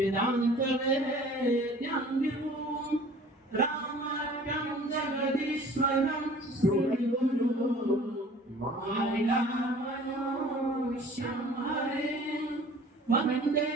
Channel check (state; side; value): normal; both; correlation 0.48